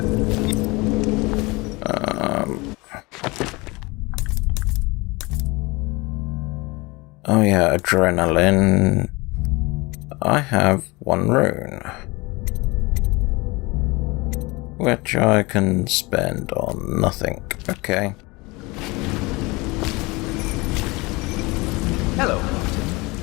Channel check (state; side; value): quieter; right; 24.3 dB